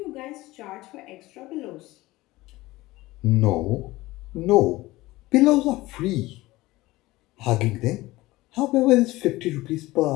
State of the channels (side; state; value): right; quieter; 19.0 dB